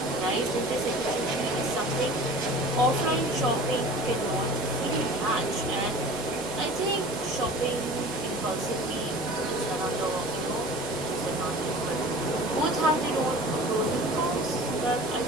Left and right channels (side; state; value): both; normal; correlation 0.41